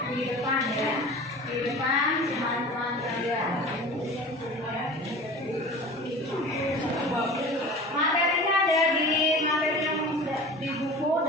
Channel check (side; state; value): both; normal; correlation 0.38